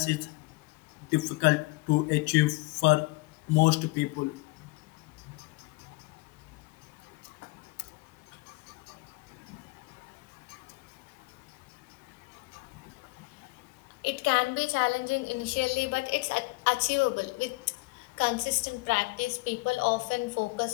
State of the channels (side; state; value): right; quieter; 25.0 dB